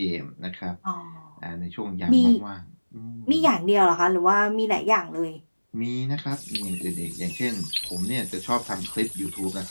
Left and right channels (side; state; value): both; inverted; correlation -1.00